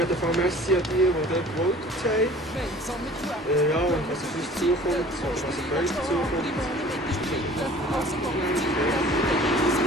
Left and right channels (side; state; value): both; normal; correlation 0.47